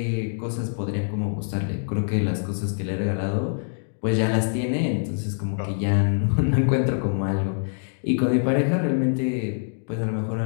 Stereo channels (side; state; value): right; silent; digital silence